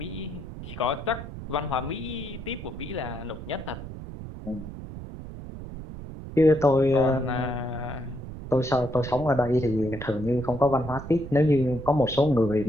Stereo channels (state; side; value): noise; right; rumble, 11 dB below the sound